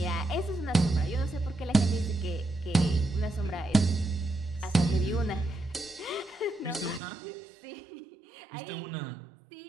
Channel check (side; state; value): left; drops out; at 7.0 s